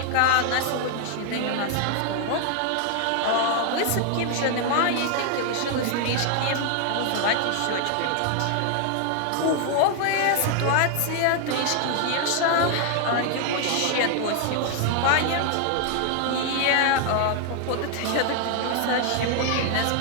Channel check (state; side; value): different; both; correlation 0.00